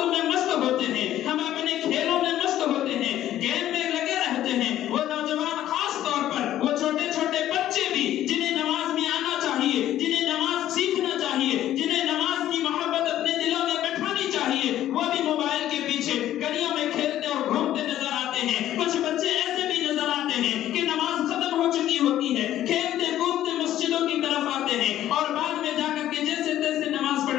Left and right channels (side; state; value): right; quieter; 12.6 dB